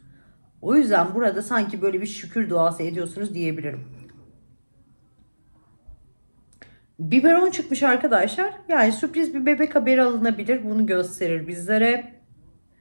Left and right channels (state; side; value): inverted; both; correlation -1.00